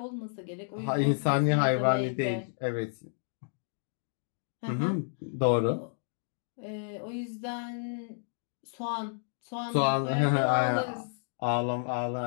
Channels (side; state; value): right; silent; digital silence